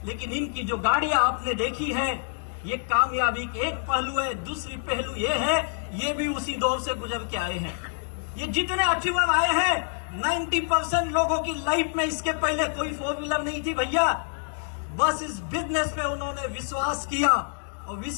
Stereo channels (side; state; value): right; silent; digital silence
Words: लेकिन इनकी जो गाड़ियां आपने देखी है, ये कामयाबी के एक पहलू है। दूसरी पहलू ये है, ये भी उसी दौर से गुजर के आए हैं। ये जितने अचीवर आए हैं, 90% लोगों की लाइफ में इसके पहले कोई 4 व्हीलर नहीं थी भैया। बस इस बिजनेस पे उन्होंने विश्वास किया, और